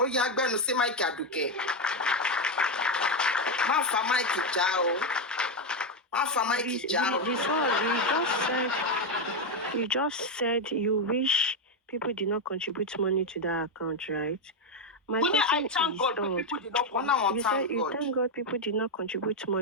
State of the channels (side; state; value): both; normal; correlation 0.06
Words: ya gbenu si Mike Aduke. Ma fa Mike ja o. Ma fa Mike ja o. You just said you wish people did not contribute money to that account, right? I thank God people did not contribute. You thank God people did not contribute